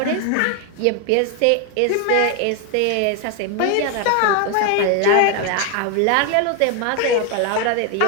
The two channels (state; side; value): different; both; correlation 0.01